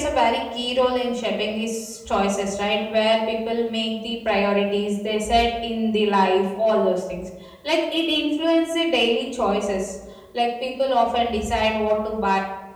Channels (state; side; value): identical; both; correlation 1.00